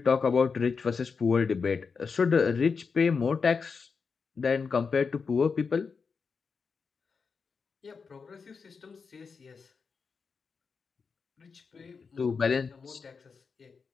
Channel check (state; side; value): quieter; right; 5.3 dB